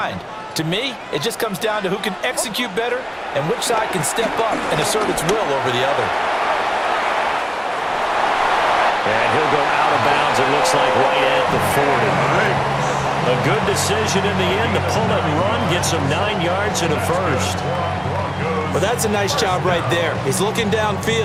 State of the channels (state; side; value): identical; both; correlation 1.00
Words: To me, it just comes down to who can execute better and which side can step up and assert its will over the other. And he'll go out of bounds, it looks like, right at the 40. A good decision in the end to pull it and run, get some 9 yards and a first. Well, that's a nice job right there. He's looking